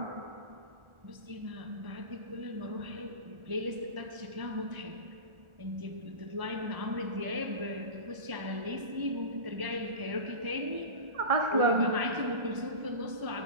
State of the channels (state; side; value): late; left; 1.4 ms